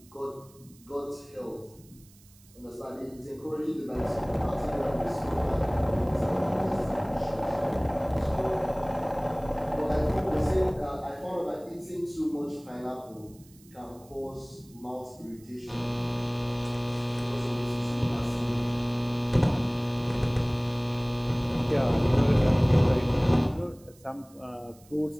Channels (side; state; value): right; noise; hiss, 27 dB below the sound